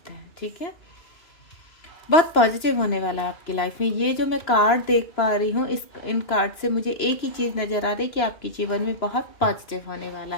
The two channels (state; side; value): late; right; 2.9 ms